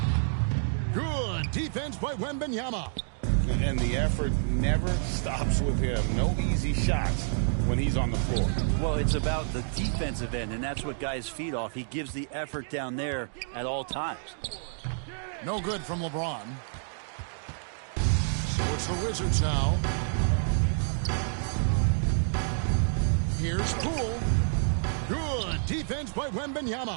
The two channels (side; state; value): left; silent; digital silence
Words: Good defense by Wembanyama. And the effort never stops with him. No easy shots when he's on the floor. Well, it's about the defensive end, and that's what guys feed off. He gives the effort down there at all times. No good from LeBron. So it's the Wizards now. Here's Poole. Good defense by